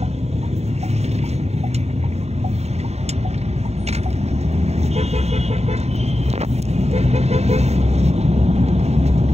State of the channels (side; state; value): left; late; 0.31 ms